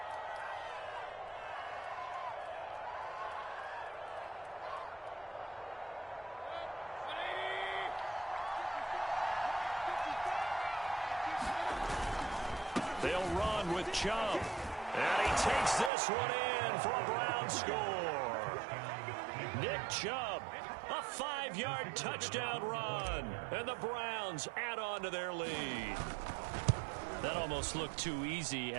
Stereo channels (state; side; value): drops out; left; at 15.9 s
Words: They'll run with Chubb. And he takes this one in for a Brown score. Nick Chubb, a 5-yard touchdown run. And the Browns add on to their lead. That almost looked too easy,